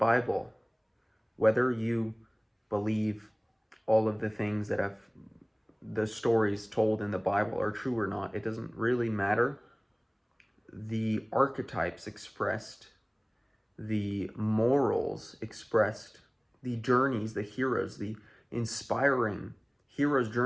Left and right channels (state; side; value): identical; both; correlation 1.00